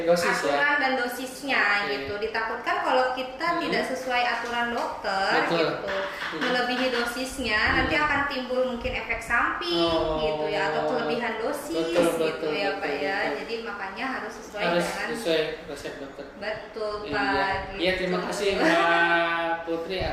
aturan dan dosisnya gitu. Ditakutkan kalau kita tidak sesuai aturan dokter gitu, melebihi dosisnya nanti akan timbul mungkin efek samping gitu ya, atau kelebihan dosis gitu ya Pak ya. Jadi makanya harus sesuai resep dokter. Betul Pak. Iya, terima kasih Mbak Putri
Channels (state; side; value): identical; both; correlation 1.00